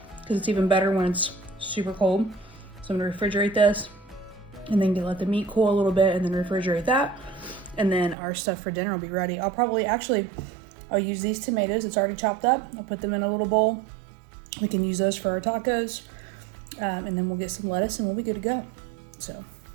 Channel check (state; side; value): drops out; left; at 8.2 s